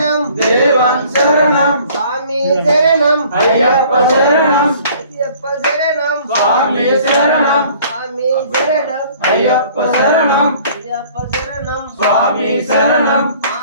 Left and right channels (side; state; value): both; inverted; correlation -0.54